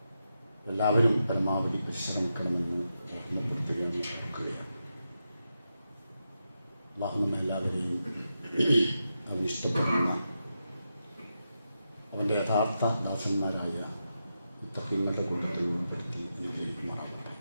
എല്ലാവരും പരമാവധി പരിശ്രമിക്കണമെന്ന് ഓർമ്മപ്പെടുത്തുകയാണ്, ഓർക്കുകയാണ്. അല്ലാഹു നമ്മെല്ലാവരെയും അവൻ ഇഷ്ടപ്പെടുന്ന അവൻ്റെ യഥാർത്ഥ ദാസന്മാരായ മുത്തക്കീങ്ങളുടെ കൂട്ടത്തിൽ ഉൾപ്പെടുത്തി അനുഗ്രഹിക്കുമാറാകട്ടെ.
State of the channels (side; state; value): both; inverted; correlation -0.87